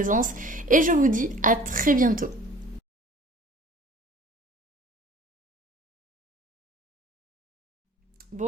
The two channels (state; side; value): normal; both; correlation 0.48